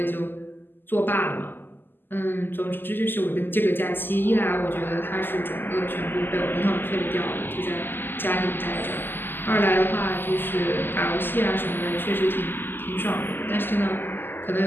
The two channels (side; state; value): right; late; 0.095 ms